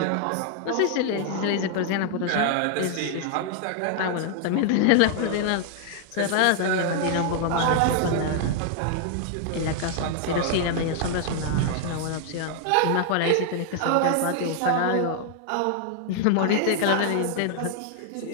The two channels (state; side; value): different; both; correlation 0.00